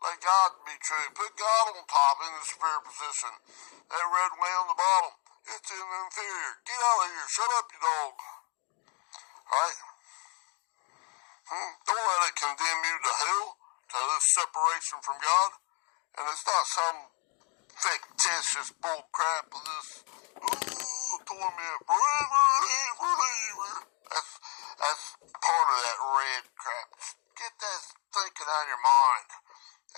Let God be true. Put God on top in the superior position. That red way on the bottom, it's in the inferior. Get out of here. Shut up, you dog. Alright? Don't let it condemn you to hell, to this separation from God. And it's not some fictitious bull crap of this, torment forever and forever. That's part of that red crap. Get that thinking out of your mind.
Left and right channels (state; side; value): quieter; right; 35.6 dB